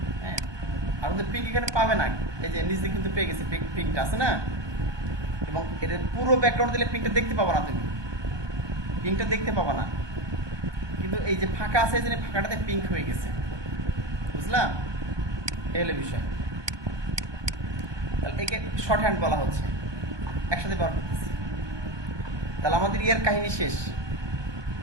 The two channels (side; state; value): left; late; 1.2 ms